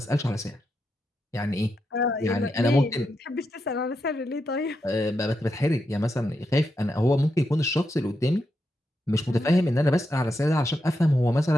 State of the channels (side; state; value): both; normal; correlation 0.85